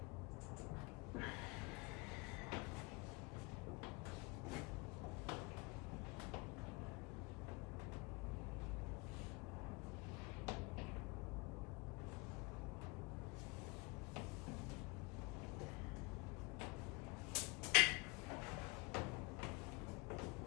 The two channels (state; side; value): quieter; right; 25.6 dB